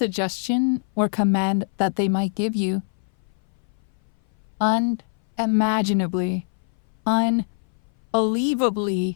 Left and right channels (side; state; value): right; silent; 59 dB below the other